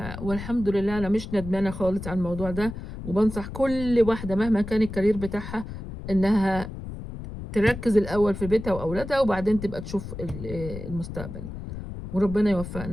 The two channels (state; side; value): noise; left; rumble, 9 dB below the sound